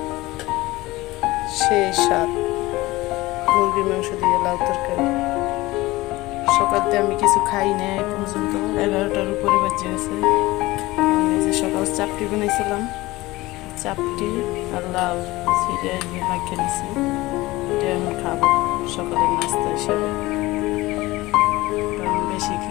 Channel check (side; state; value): right; quieter; 19.7 dB